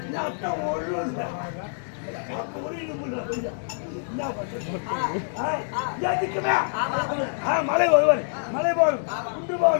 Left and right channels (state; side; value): silent; right; digital silence